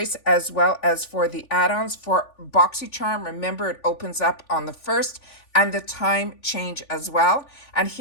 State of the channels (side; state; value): right; late; 3.5 ms